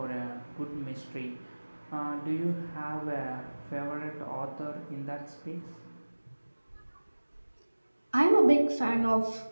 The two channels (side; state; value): both; inverted; correlation -1.00